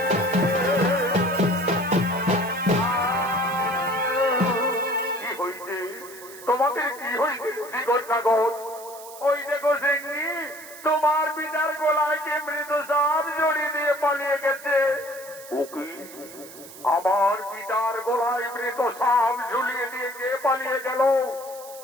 কি হইছে? তোমাদের কি হইছে শ্রীগণ নাগর? ওই দেখো সিংহি, তোমার পিতার গলায় কে মৃত সাপ জড়িয়ে দিয়ে পালিয়ে গেছে। ওকে, আমার পিতার গলায় মৃত সাপ ঝুলিয়ে দিয়ে কে পালিয়ে গেল?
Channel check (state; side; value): noise; right; hiss, 17 dB below the sound